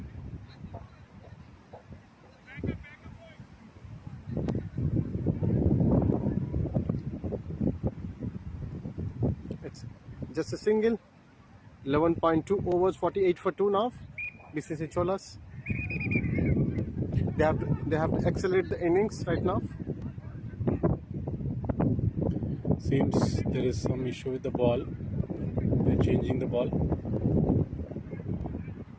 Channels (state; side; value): identical; both; correlation 1.00